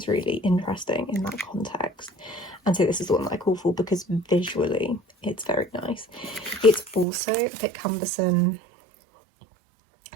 really interesting in that context. And so this is the one that I call for because visually it's very nice. It's also a bit cumbersome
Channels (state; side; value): drops out; left; at 7.1 s